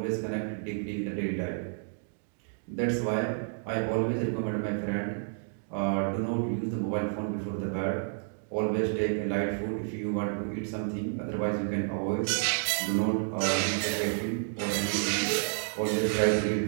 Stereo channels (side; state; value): left; silent; digital silence